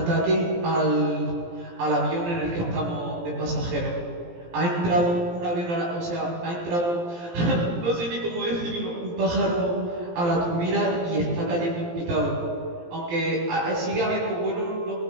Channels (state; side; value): late; left; 17 ms